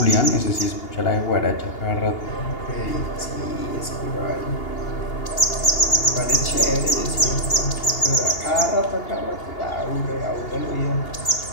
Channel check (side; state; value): right; late; 2.8 ms